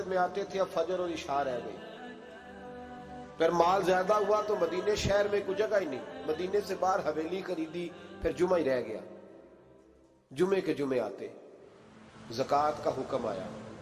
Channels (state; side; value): identical; both; correlation 1.00